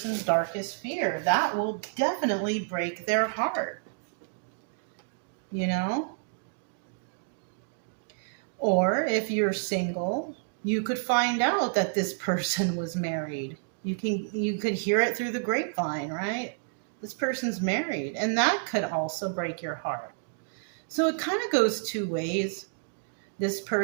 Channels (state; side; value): silent; left; digital silence